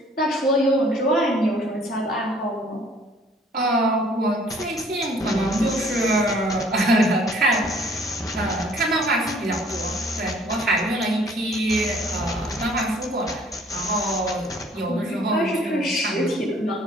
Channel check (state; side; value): normal; both; correlation 0.57